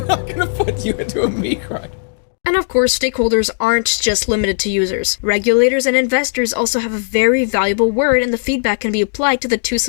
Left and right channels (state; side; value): silent; right; digital silence